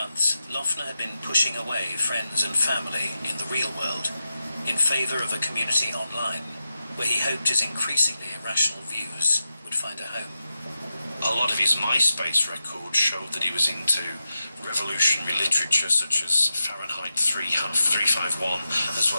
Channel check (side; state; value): both; inverted; correlation -0.89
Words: Loeffner had been pushing away friends and family in the real world in favor of a community online, where he hoped his increasingly irrational views would find a home. A lot of his MySpace records showed that he was into revolutionary literature such as Fahrenheit 351, as